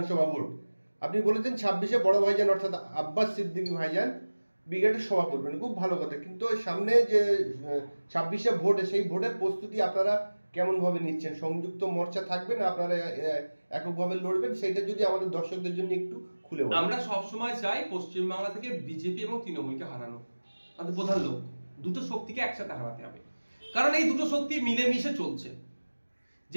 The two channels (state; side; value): inverted; both; correlation -1.00